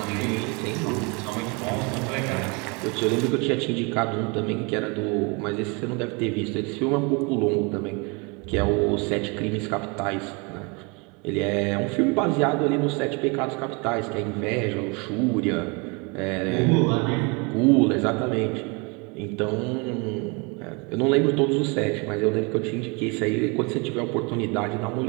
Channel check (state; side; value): quieter; left; 30.4 dB